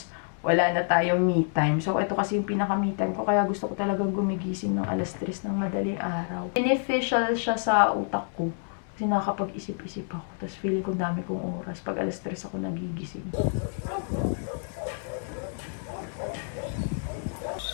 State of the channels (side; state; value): right; silent; 59 dB below the other